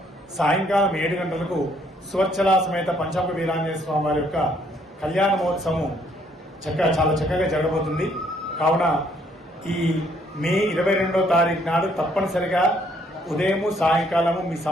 సాయంకాలం 7 గంటలకు సువర్చలా సమేత పంచముఖి వీరాంజనేయ స్వామి వారి యొక్క కళ్యాణ మహోత్సవం చాలా చక్కగా జరగబోతుంది. కావున ఈ మే 22వ తారీఖు నాడు తప్పనిసరిగా ఉదయము సాయంకాలము మీ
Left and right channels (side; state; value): both; normal; correlation 0.67